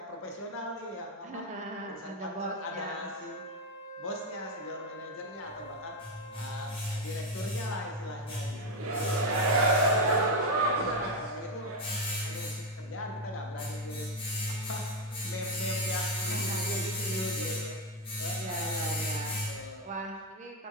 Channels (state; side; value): normal; both; correlation 0.08